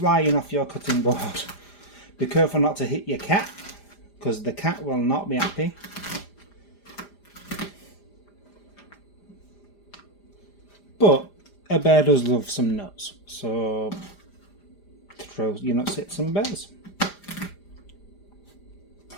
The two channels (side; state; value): right; late; 5.0 ms